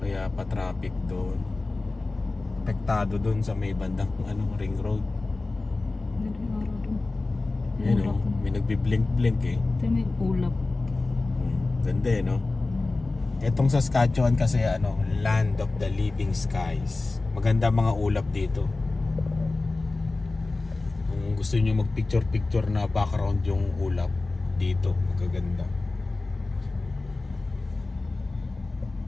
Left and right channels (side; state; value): right; quieter; 3.4 dB